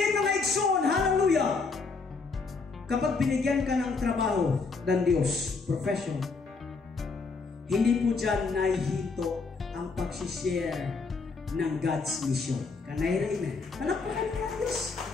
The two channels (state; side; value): quieter; right; 4.4 dB